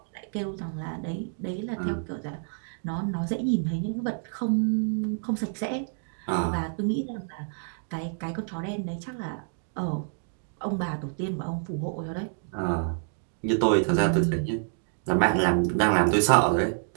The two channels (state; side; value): silent; left; digital silence